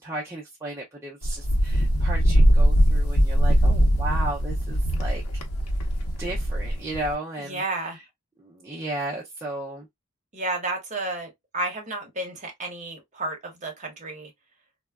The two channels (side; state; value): both; normal; correlation 0.84